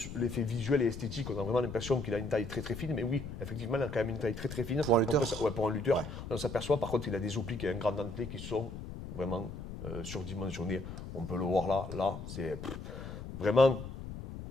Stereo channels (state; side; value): noise; left; rumble, 9 dB below the sound